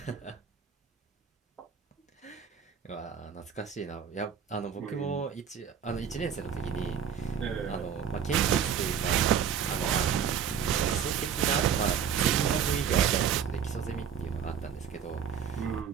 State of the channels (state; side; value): quieter; left; 7.8 dB